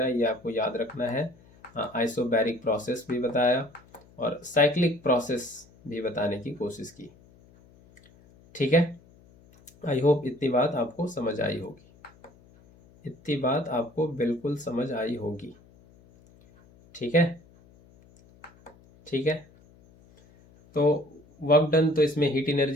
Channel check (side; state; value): left; noise; hum, 27 dB below the sound